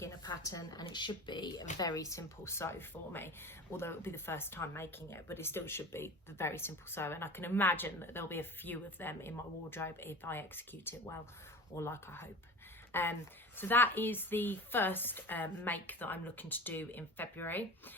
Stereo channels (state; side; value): normal; both; correlation 0.34